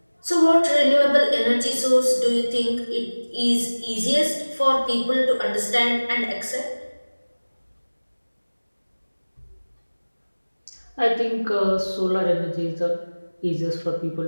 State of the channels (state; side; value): inverted; both; correlation -1.00